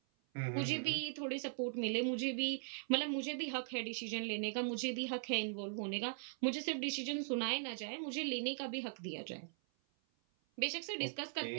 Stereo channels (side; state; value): left; silent; 51 dB below the other